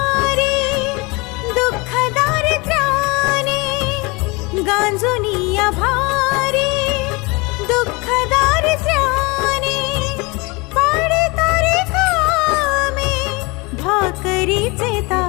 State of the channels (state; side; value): quieter; right; 26.4 dB